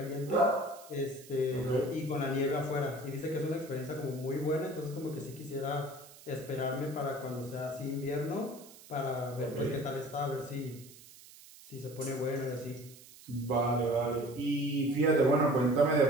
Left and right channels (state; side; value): noise; right; hiss, 20 dB below the sound